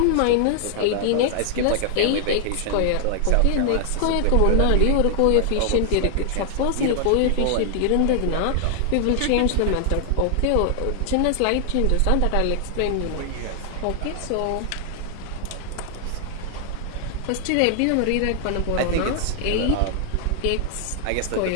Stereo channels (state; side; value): different; both; correlation 0.00